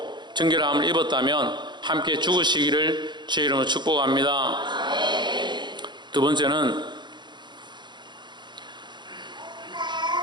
정결함을 입었다면 함께 죽으시기를 주의 이름으로 축복합니다. 두 번째는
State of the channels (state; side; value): late; left; 0.22 ms